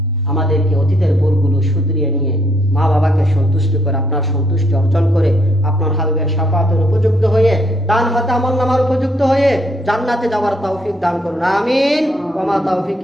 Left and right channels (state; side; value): normal; both; correlation 0.71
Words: আমাদেরকে অতীতের ভুলগুলো শুধরিয়ে নিয়ে মা বাবাকে সন্তুষ্ট করে, আপনার সন্তুষ্টি অর্জন করে, আপনার হাবিবের শাফাতের উপযুক্ত হয়ে, ডান হাতে আমলনামার উপযুক্ত হয়ে জান্নাতে যাওয়ার তৌফিক দান করুন। আমিন। ওয়া মা তাওফিক